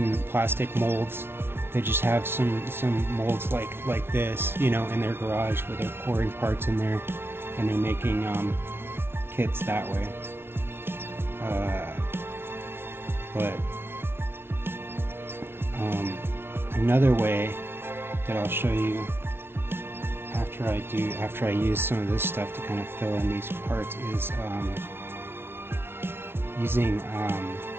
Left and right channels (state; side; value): late; left; 0.11 ms